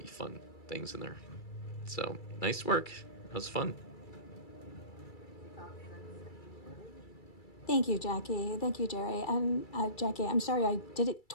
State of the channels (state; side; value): late; right; 2.3 ms